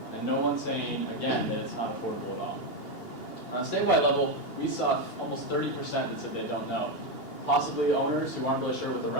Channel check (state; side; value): late; right; 2.8 ms